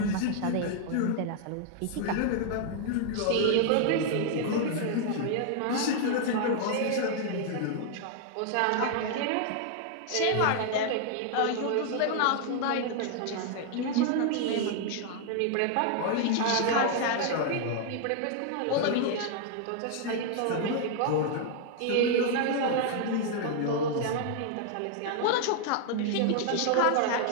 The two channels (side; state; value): both; different; correlation 0.00